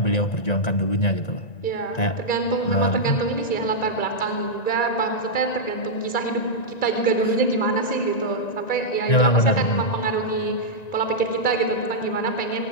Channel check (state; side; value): late; right; 1.9 ms